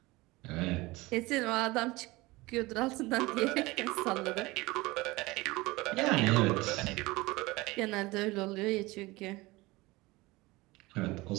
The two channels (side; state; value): left; quieter; 21.4 dB